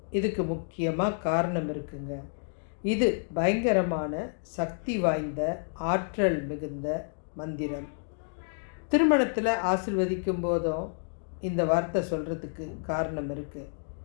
இதுக்கு முக்கியமாக காரணம் இருக்குங்க. இது பயங்கரமான சக்தி வாய்ந்த ஆற்றல் மிகுந்த மந்திரம். திருமணத்தில் ஆசீர்வதிக்கும் போதும் இந்த வார்த்தை சொல்கிறதுக்கு காரணம் இருக்குது.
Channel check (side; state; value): right; silent; digital silence